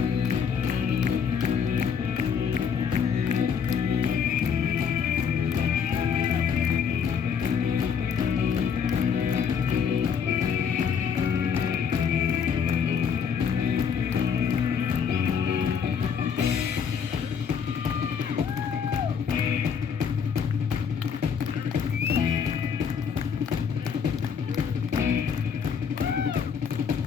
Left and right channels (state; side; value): quieter; right; 6.9 dB